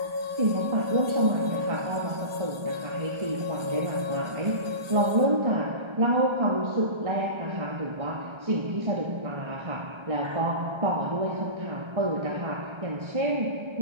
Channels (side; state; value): left; late; 1.3 ms